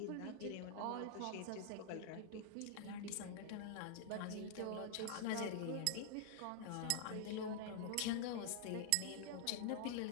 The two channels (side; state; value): both; different; correlation 0.00